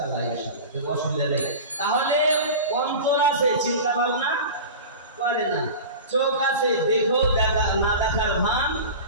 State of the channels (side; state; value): both; inverted; correlation -0.32